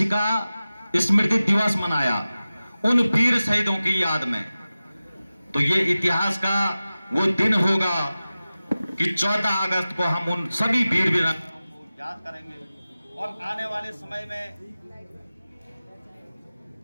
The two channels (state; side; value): inverted; both; correlation -0.96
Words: स्मृति दिवस मनाया उन वीर शहीदों की याद में। तो ये इतिहास का वो दिन होगा कि 14 अगस्त को हम उन सभी वीर वीरांगनाओं को याद करेंगे। और आने वाले समय में